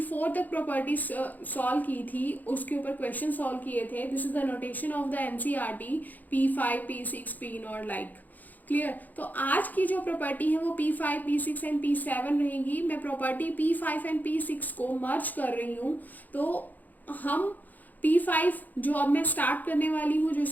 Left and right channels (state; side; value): late; right; 0.083 ms